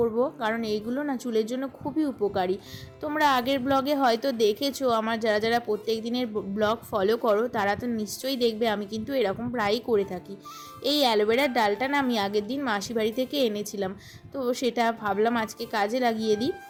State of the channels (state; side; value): identical; both; correlation 1.00